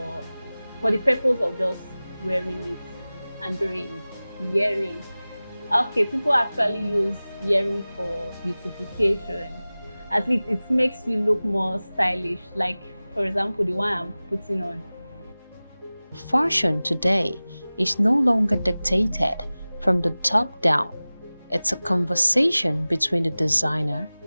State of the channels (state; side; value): inverted; both; correlation -0.98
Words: the purpose of just wearing it and doing earrings. Okay, people actually use earrings for beautification. At least it makes you look more stylish, like for example the one I'm putting on. Fashion today is no longer dictated from the top down. It's a conversation between the designer,